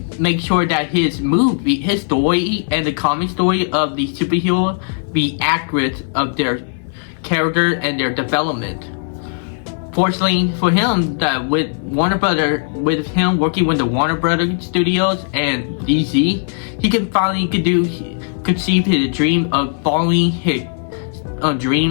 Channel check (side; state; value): right; silent; 61 dB below the other